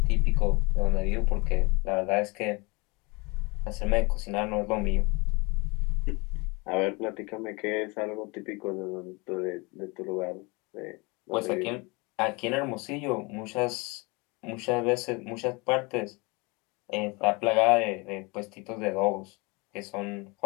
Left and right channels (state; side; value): quieter; right; 27.4 dB